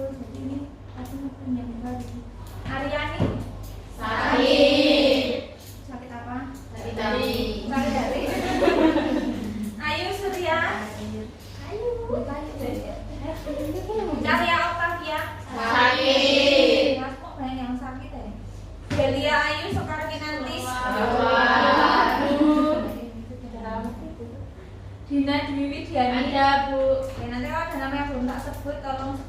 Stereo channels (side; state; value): both; identical; correlation 1.00